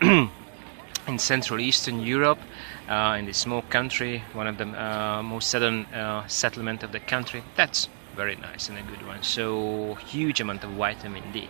Central Eastern Europe, in this small country, one of the most southern settlement of the country, that's very nice and a good one. So huge amount of vitamin D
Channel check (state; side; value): silent; left; digital silence